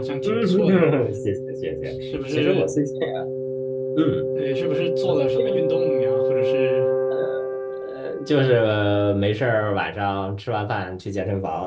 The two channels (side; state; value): both; identical; correlation 1.00